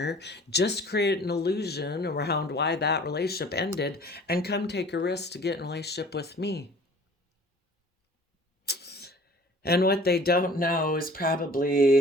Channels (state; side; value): normal; both; correlation 0.48